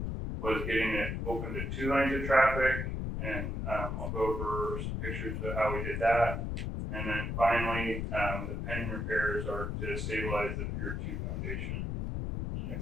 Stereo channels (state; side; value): noise; left; rumble, 2 dB below the sound